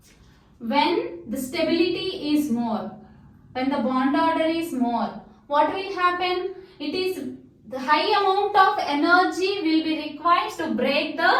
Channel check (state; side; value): identical; both; correlation 1.00